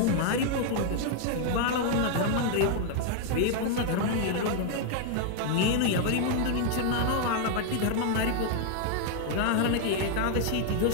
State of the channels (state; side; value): different; both; correlation 0.00